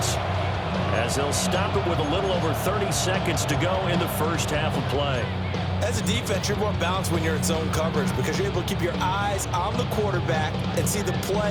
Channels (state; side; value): identical; both; correlation 1.00